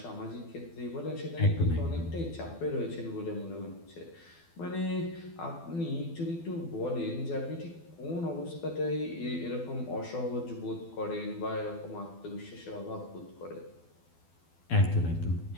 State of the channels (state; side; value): late; right; 12 ms